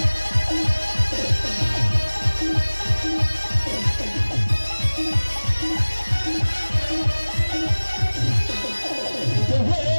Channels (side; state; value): both; inverted; correlation -1.00